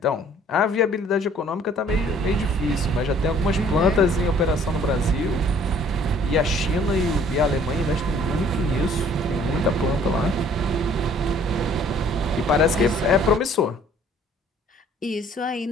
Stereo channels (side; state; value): both; normal; correlation 0.56